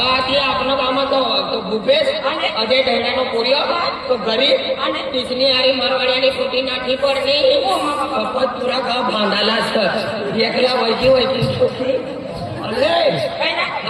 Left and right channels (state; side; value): identical; both; correlation 1.00